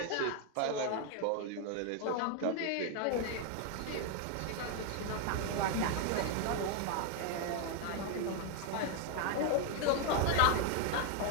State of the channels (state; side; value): different; both; correlation 0.01